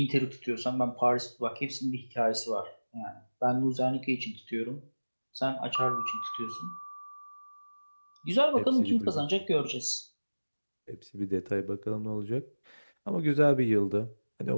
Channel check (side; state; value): both; inverted; correlation -1.00